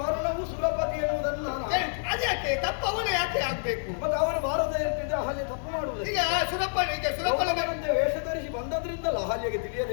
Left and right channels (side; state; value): right; silent; digital silence